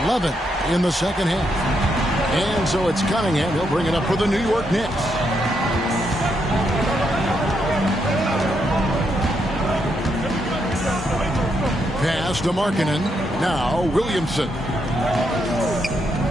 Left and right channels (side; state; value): both; normal; correlation 0.79